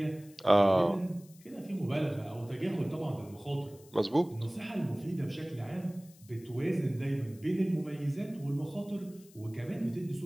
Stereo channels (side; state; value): left; noise; hiss, 25 dB below the sound